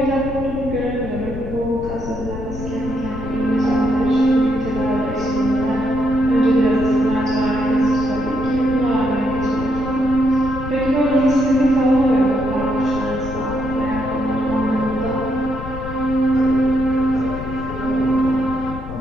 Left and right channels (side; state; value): left; noise; rumble, 9 dB below the sound